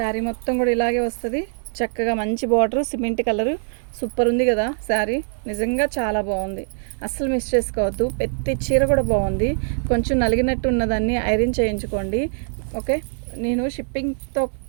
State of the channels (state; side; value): silent; left; digital silence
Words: మొత్తం కూడా ఇలాగే వస్తుంది. చక్కగా మంచి బార్డరు, సిమెంట్ కలరు, సూపర్ ఉంది కదా శారీ. నిజంగా చాలా బాగుంది, అస్సలు మిస్ చేసుకోవద్దు. ప్రతి చీర కూడా బాగుంది. కొంచెం నలిగినట్టు ఉన్నదాన్ని ఐరన్ చేయించుకోండి, ఓకే. నేను షిప్పింగ్తో